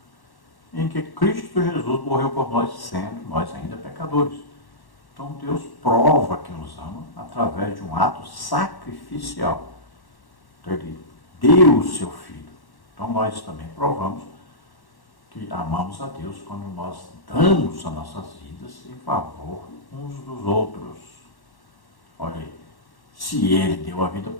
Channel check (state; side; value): late; right; 1.1 ms